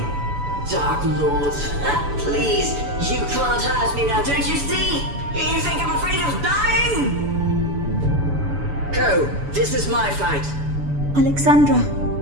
Dark Lord, please, you can't hurt me now, don't you see? You think I'm afraid of dying? Go, this is my fight. Alexandra.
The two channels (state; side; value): late; left; 7.0 ms